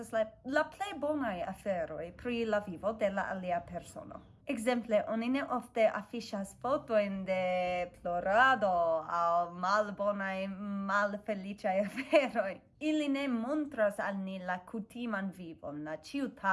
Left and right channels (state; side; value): identical; both; correlation 1.00